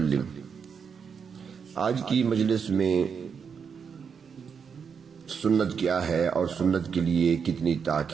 آج کی مجلس میں سنت کیا ہے اور سنت کے لیے کتنی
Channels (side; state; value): left; quieter; 6.5 dB